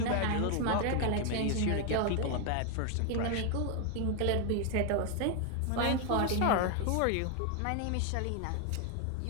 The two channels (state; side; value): different; both; correlation 0.00